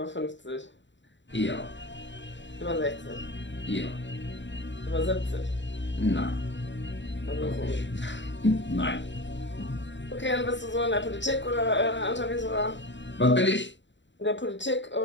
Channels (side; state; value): right; late; 0.53 ms